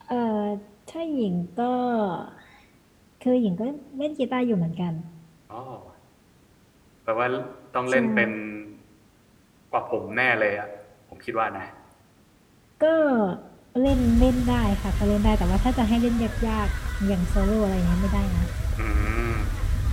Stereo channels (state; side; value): identical; both; correlation 1.00